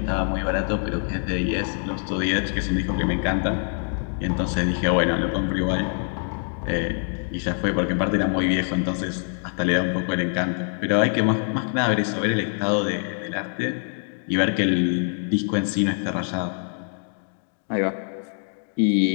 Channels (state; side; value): silent; right; 56 dB below the other